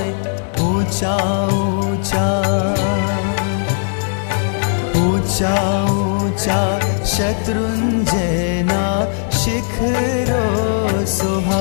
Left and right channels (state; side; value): silent; right; 57 dB below the other